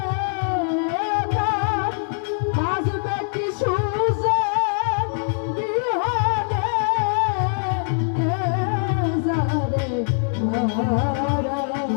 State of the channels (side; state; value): right; silent; 60 dB below the other